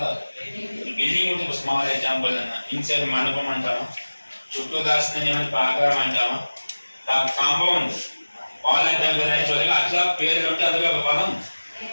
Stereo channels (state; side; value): inverted; both; correlation -1.00